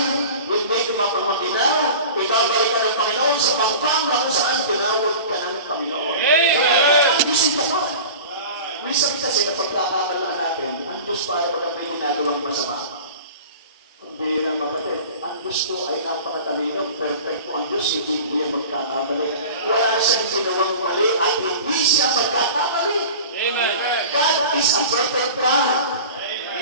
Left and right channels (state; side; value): inverted; both; correlation -0.38